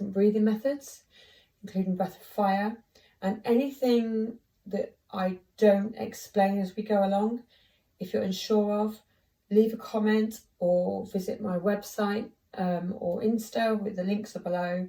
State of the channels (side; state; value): both; identical; correlation 1.00